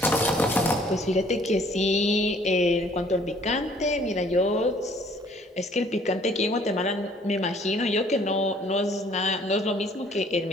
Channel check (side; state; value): both; normal; correlation 0.59